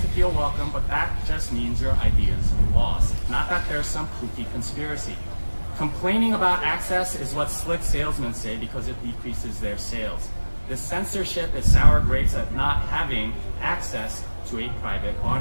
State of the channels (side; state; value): both; inverted; correlation -1.00